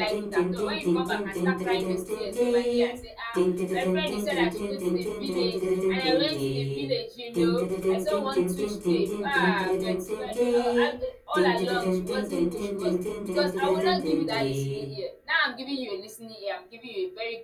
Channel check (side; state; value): both; identical; correlation 1.00